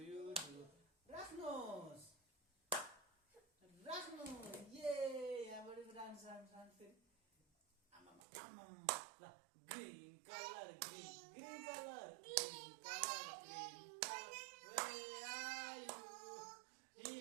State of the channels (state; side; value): drops out; left; at 8.2 s